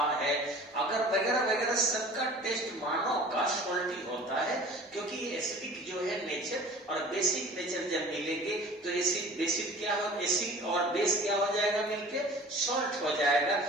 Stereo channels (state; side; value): normal; both; correlation 0.44